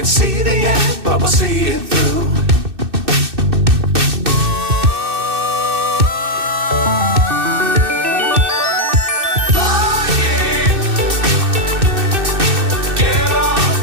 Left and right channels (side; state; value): left; late; 2.6 ms